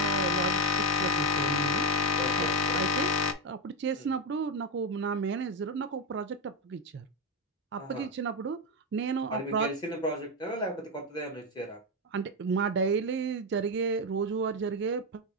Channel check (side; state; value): both; normal; correlation 0.08